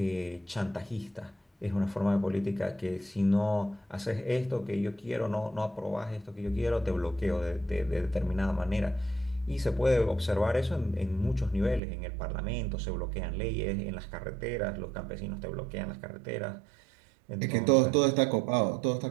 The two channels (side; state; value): left; drops out; at 11.8 s